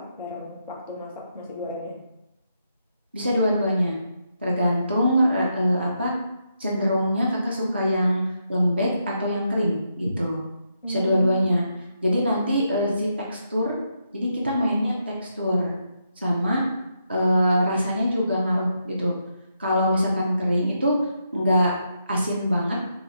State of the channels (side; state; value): both; inverted; correlation -0.81